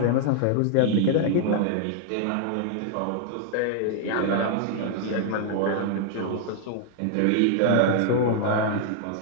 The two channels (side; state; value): both; different; correlation 0.00